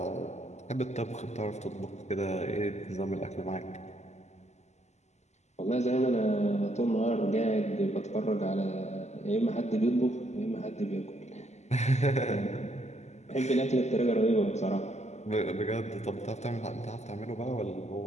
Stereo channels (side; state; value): right; late; 0.33 ms